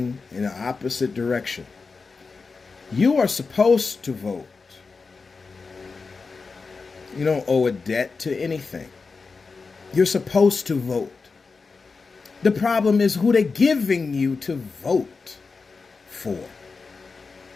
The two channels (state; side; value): quieter; right; 4.5 dB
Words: in the opposite direction. You are supposed to vote. You don't owe a debt to anything. You're supposed to vote. The problem is who they're giving you to vote for.